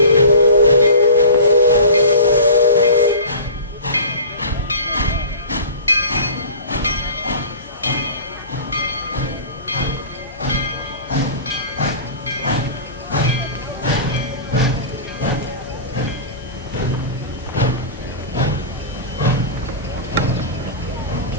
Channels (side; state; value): both; inverted; correlation -0.37